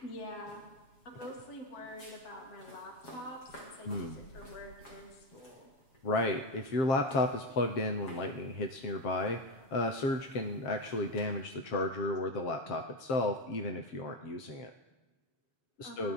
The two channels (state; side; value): late; right; 7.6 ms